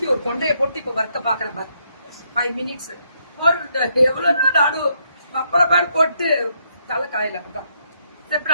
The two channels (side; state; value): both; inverted; correlation -0.75